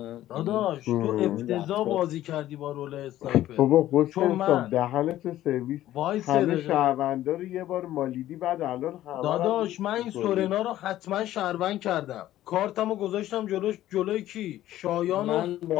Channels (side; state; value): right; quieter; 13.8 dB